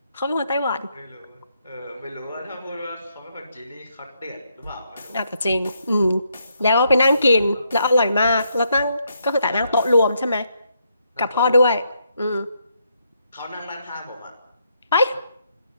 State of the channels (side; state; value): both; inverted; correlation -0.77